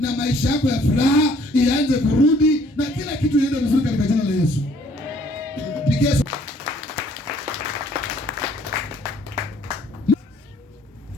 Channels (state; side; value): normal; both; correlation 0.60